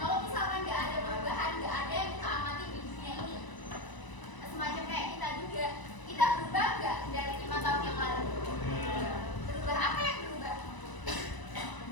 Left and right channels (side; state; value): right; late; 1.0 ms